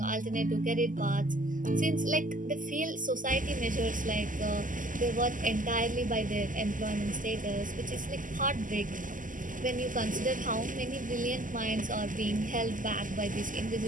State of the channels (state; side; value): late; left; 0.38 ms